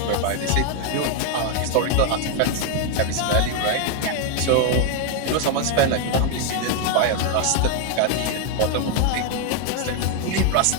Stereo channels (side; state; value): both; different; correlation 0.00